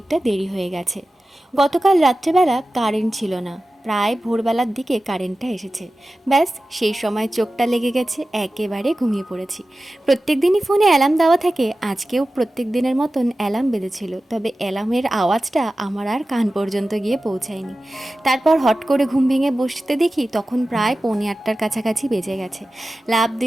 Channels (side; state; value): both; normal; correlation 0.95